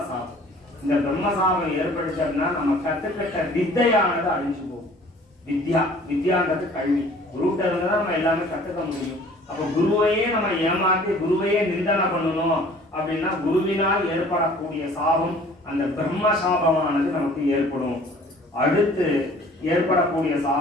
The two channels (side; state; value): both; normal; correlation 0.51